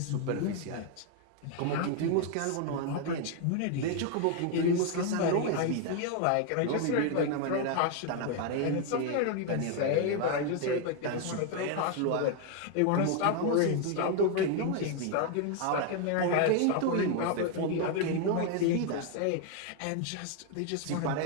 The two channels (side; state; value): both; different; correlation 0.01